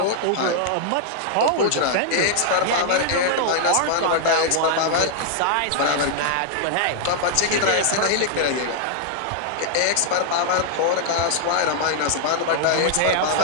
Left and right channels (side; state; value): both; different; correlation -0.01